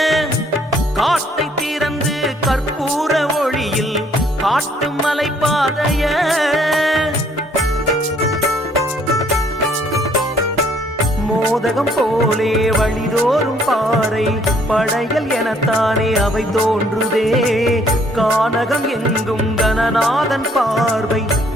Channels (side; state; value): both; normal; correlation 0.64